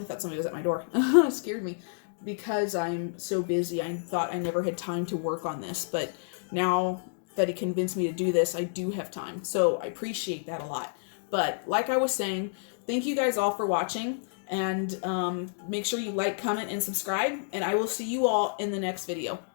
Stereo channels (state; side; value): silent; right; digital silence